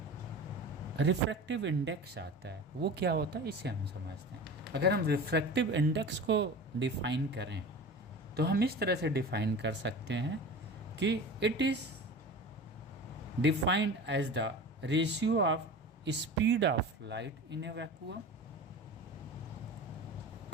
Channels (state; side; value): normal; both; correlation 0.34